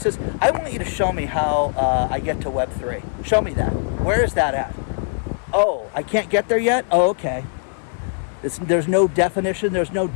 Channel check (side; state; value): right; silent; digital silence